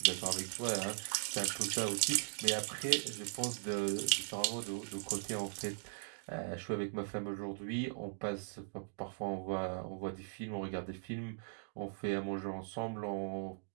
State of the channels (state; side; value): silent; left; digital silence